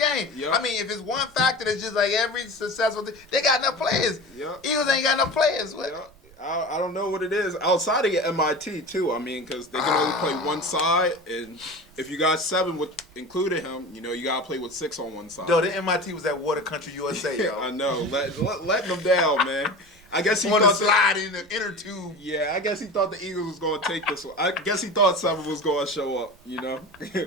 Yep. I mean, if it's one factor that's just like every successful thing, they got enough players. Yep. Eagles ain't got enough players. What? Yep. I don't know what it is. Outside of MIT, too. I mean, because they can only play one side. And if you got 7 with including him, you got to play with 6 on one side. Yo, the MIT was at Water Country, USA, yo. I know. Letting them down, man. I guess he want to thought slide in the inner tube. Yeah, I guess he thought the Eagles was going to take this one. I guess he thought 7 was going to show up,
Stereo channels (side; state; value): right; noise; rumble, 27 dB below the sound